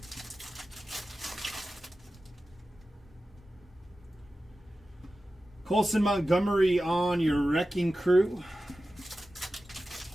Colson Montgomery on your Wrecking Crew.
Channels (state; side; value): normal; both; correlation 0.94